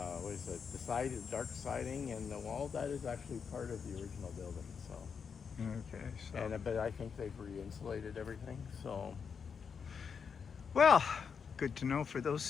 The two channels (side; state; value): right; quieter; 6.3 dB